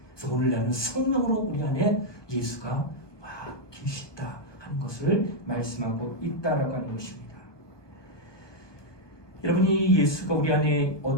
그래서 오늘 나는 성령으로 우리 안에 예수가 와 계시다 하는 것을 말씀하고 있다라고 하는 것입니다. 여러분이 예수가 우리 안에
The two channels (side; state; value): right; late; 1.2 ms